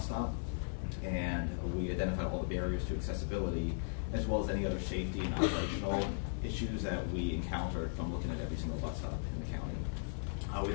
stop. And we identified all the barriers to accessibility as well as any other safety and operational issues that we encountered from looking at every single bus stop in the county. We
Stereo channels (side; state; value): right; silent; 53 dB below the other